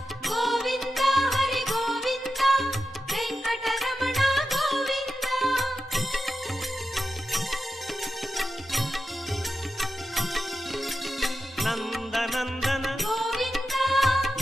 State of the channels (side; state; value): both; normal; correlation 0.90